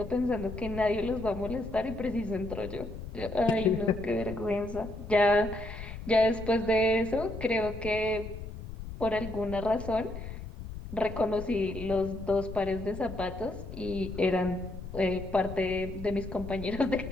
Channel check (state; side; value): noise; left; rumble, 10 dB below the sound